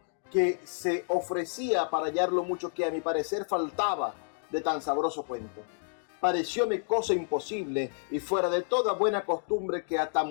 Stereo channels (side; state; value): right; silent; digital silence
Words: que se ofrecía para hallar lo mucho que a mi parecer faltaba de tan sabroso cuento. Parecióme cosa imposible y fuera de toda buena costumbre que a